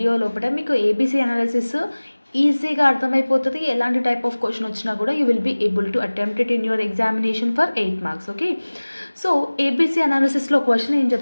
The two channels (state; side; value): inverted; both; correlation -1.00